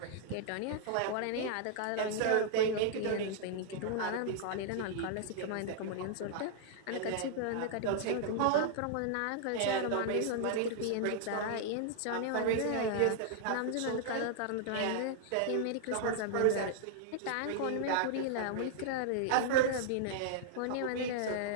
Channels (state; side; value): different; both; correlation -0.01